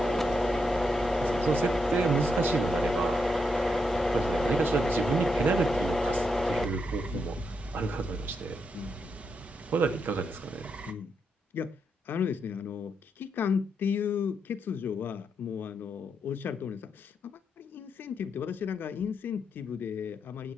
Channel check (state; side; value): normal; both; correlation 0.82